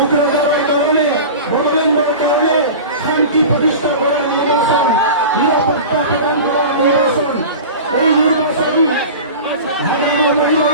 কাৰণে, বড়োলেণ্ডৰ কাৰণে শান্তি প্ৰতিষ্ঠা কৰা নিৰ্বাচন, নিৰাপত্তা প্ৰদান কৰা নিৰ্বাচন। এই নিৰ্বাচন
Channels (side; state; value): both; inverted; correlation -0.33